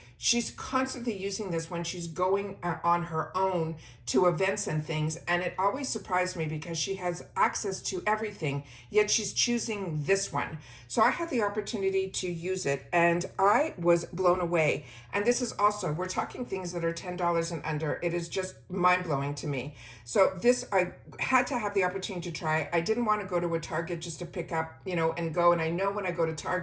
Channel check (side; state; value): both; identical; correlation 1.00